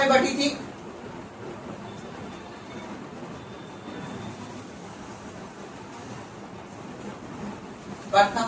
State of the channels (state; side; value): identical; both; correlation 1.00